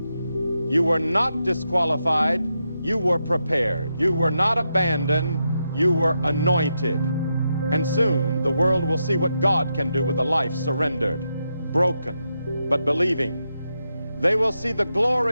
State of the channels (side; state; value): both; inverted; correlation -0.85